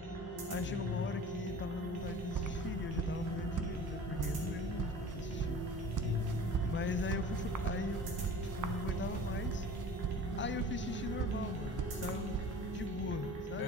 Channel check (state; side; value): normal; both; correlation 0.41